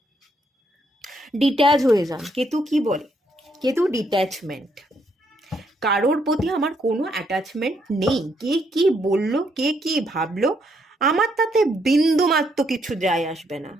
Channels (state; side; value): normal; both; correlation 0.74